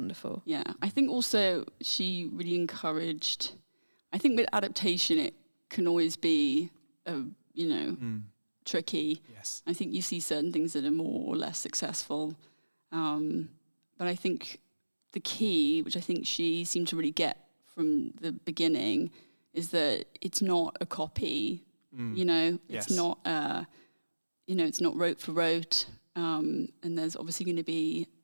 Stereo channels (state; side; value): inverted; both; correlation -1.00